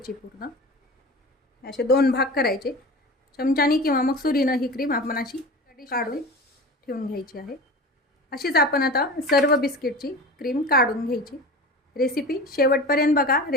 पूर्ण। असे दोन भाग करायचे, चमच्याने किंवा मग सुरीनं ही क्रीम आपण अशी काढून ठेवून घ्यायची आहे। अशीच आपण आता सर्व बिस्किटची क्रीम काढून घ्यायची। रेसिपी शेवटपर्यंत बघा।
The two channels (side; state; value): both; normal; correlation 0.34